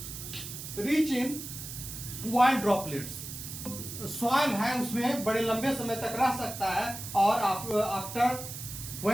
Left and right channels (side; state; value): right; noise; hiss, 9 dB below the sound